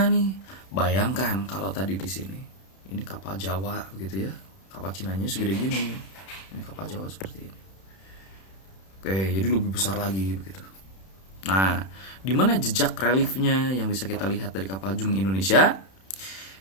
nih. Bayangkan kalau tadi di sini. Ini kapal Jawa begitu ya. Kapal Cinanya segede gini. Ini kapal Jawa seperti ini. Oke, jadi lebih besar lagi begitu. Nah, di mana jejak reliefnya yang bisa kita lihat dari kapal Jung Indonesia?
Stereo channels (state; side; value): late; right; 31 ms